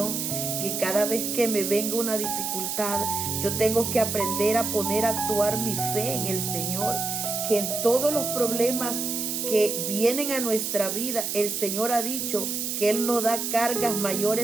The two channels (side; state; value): right; noise; hiss, 2 dB below the sound